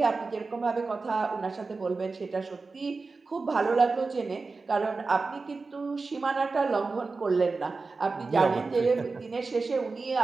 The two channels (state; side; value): quieter; left; 4.0 dB